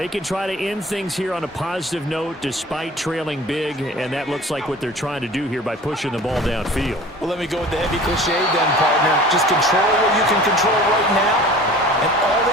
can try to end things here on a positive note despite trailing big, and that looks like what they're trying to do here by pushing the ball downfield. Well, let me go with the heavy cliche then, partner. Just control what you can control right now, and all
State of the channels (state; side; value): normal; both; correlation 0.43